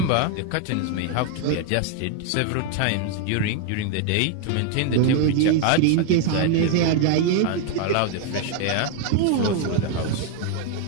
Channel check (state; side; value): different; both; correlation 0.01